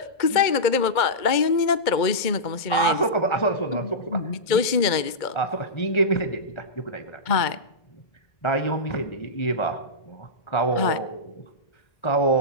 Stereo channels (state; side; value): late; right; 2.1 ms